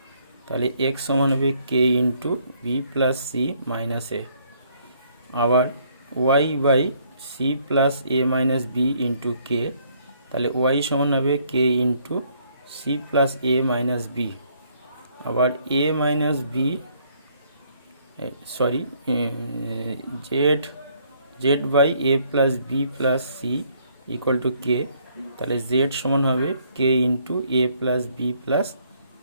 তাহলে এক্স সমান হবে k into b plus c minus a. আবার y by c plus A minus B into k, তাহলে ওয়াই সমান হবে কে ইন্টু সি প্লাস এ minus b. আবার a minus b z by A plus B plus c equal to k, তাহলে z সমান হবে k into A plus B plus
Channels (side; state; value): both; inverted; correlation -0.67